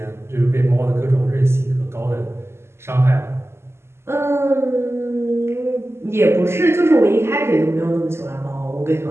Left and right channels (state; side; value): late; left; 0.12 ms